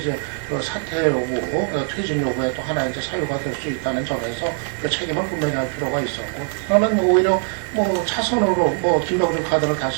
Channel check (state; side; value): silent; left; 65 dB below the other